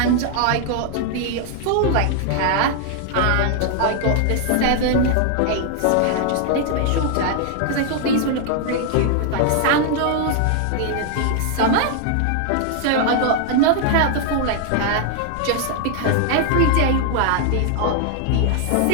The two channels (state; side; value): different; both; correlation 0.00